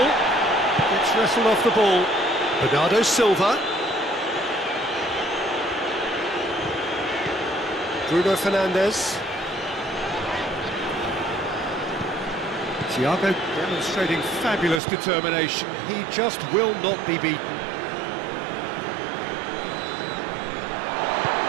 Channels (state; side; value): drops out; left; at 14.8 s